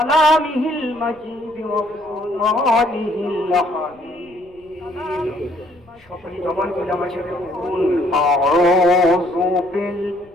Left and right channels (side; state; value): left; noise; rumble, 30 dB below the sound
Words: المجيد وفرقانه الحميد সকল জবান খুলে আমার সাথে বলুন আউযু